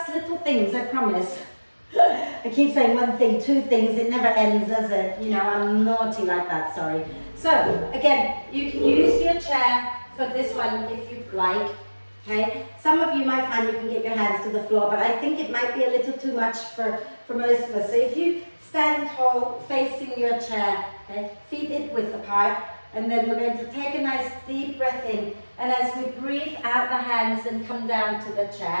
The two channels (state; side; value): inverted; both; correlation -1.00